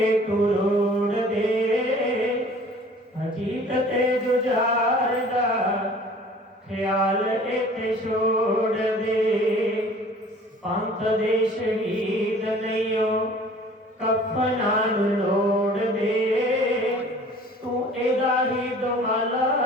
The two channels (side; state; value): both; normal; correlation 0.49